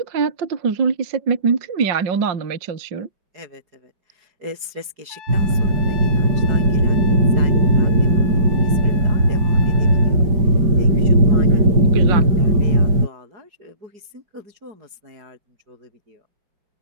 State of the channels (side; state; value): left; late; 4.8 ms